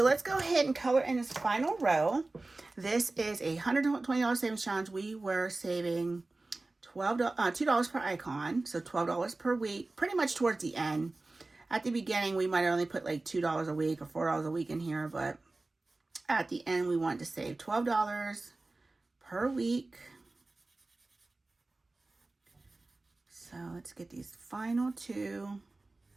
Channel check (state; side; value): quieter; left; 3.2 dB